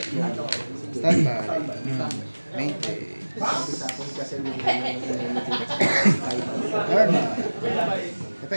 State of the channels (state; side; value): inverted; both; correlation -1.00